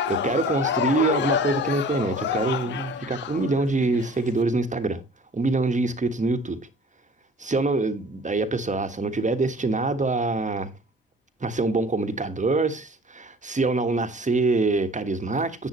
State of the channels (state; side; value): normal; both; correlation 0.47